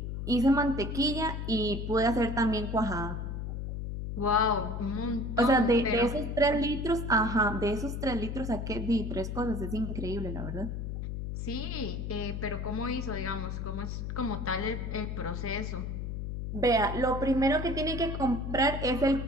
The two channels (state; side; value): noise; left; hum, 4 dB below the sound